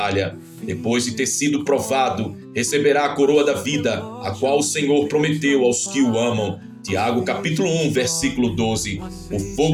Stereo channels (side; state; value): both; identical; correlation 1.00